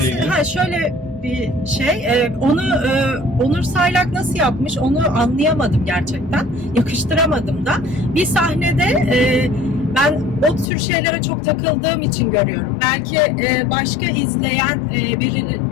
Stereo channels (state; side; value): drops out; right; at 10.7 s